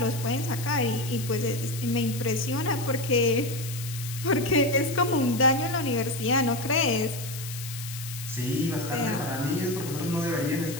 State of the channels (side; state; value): left; noise; hiss, 10 dB below the sound